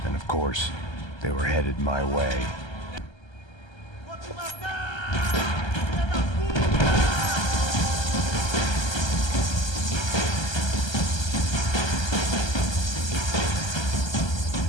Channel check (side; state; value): right; late; 1.3 ms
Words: And of course, they were headed my way.